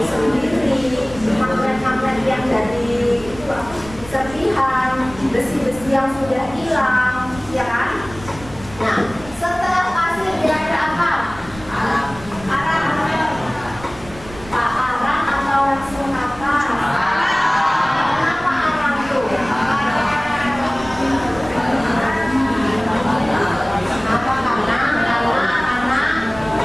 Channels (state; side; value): noise; right; rumble, 17 dB below the sound